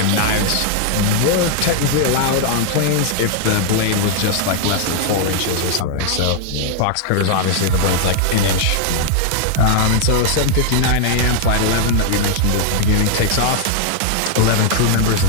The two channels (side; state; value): both; different; correlation 0.00